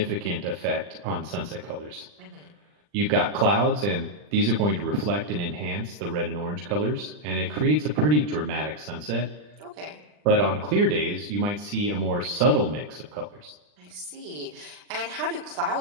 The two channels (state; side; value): late; left; 39 ms